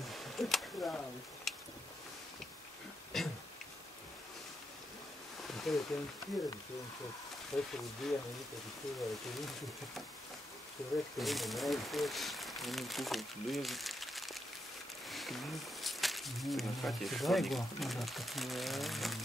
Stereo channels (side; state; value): both; normal; correlation 0.83